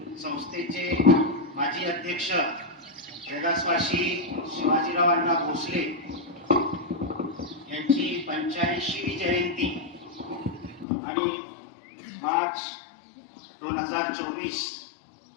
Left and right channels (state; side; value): drops out; right; at 10.9 s